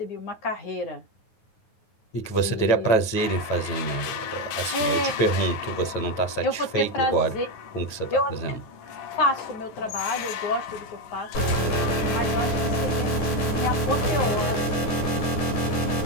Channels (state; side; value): late; right; 9.5 ms